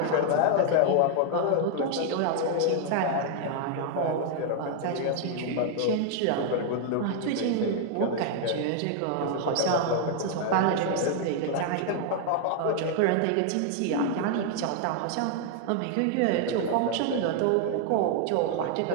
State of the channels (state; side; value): different; both; correlation 0.00